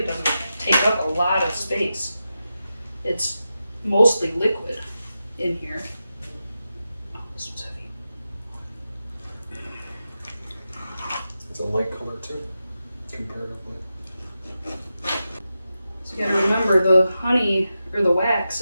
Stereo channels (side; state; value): both; inverted; correlation -0.90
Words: doesn't take up a lot of space. It's mostly liquid in here. Oh, this one's heavy. It's a light color too, comparatively. So you gotta remember the honey or the wax